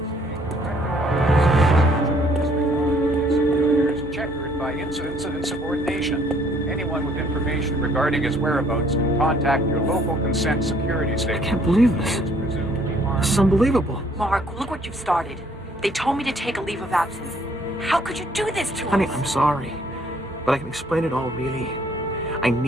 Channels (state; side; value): normal; both; correlation 0.63